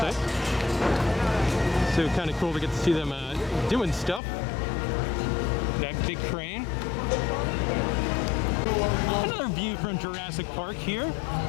So kind of cool to get to see them doing stuff. That big crane. Another view from Jurassic Park here.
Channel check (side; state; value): right; drops out; at 4.2 s